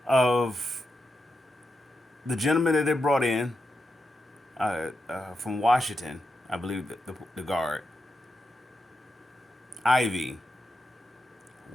of the gentleman that they brought in from Washington, I believe the guard, Ivy,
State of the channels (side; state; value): both; normal; correlation 0.86